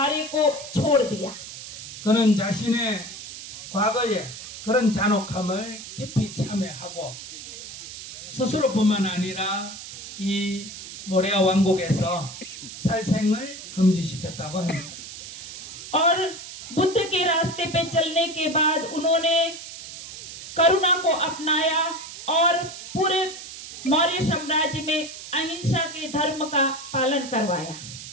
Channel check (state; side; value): noise; right; hiss, 12 dB below the sound